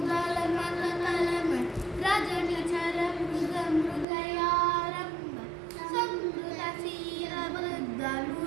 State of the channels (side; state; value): left; drops out; at 4.0 s